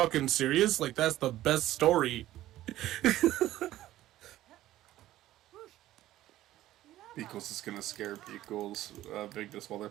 serious? Like, that's the best story." Beakles is gonna scare Beakles, Vigdis, while they're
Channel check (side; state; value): left; quieter; 14.5 dB